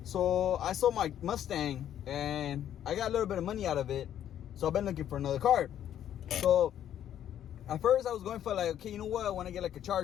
So I sold my Mustang and I got a little bit of money out of it. So I've been looking for another car. So at first I was going for like, okay, you know what? I want to get like a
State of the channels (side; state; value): right; quieter; 10.6 dB